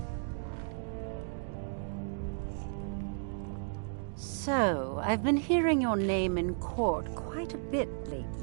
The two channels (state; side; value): silent; left; digital silence